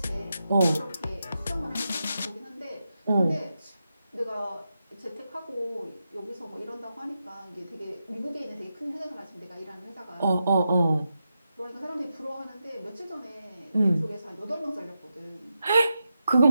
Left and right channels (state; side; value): inverted; both; correlation -0.88